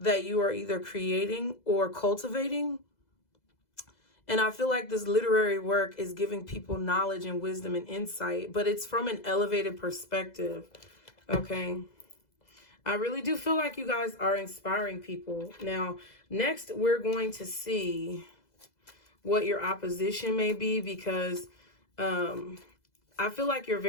you are either creating or cultivating. And I feel like this literary work is giving people knowledge and wisdom and insight, but it's from an elevated perspective, okay? I really do feel like you guys are inspiring people. Now, next, we're going to see what your opposition may be, because I feel like you're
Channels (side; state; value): right; late; 2.0 ms